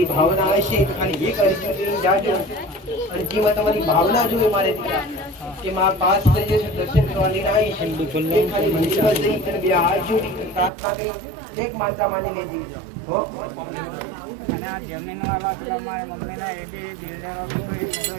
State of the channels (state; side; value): drops out; left; at 10.7 s